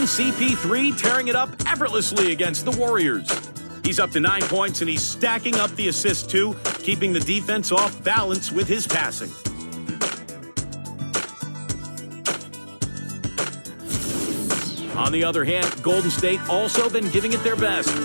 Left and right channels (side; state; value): both; inverted; correlation -1.00